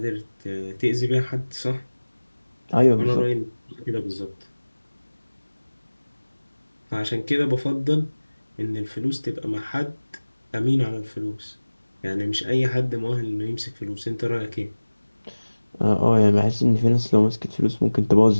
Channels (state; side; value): inverted; both; correlation -1.00